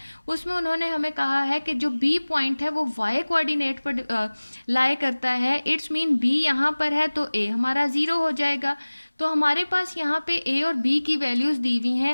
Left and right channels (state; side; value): inverted; both; correlation -1.00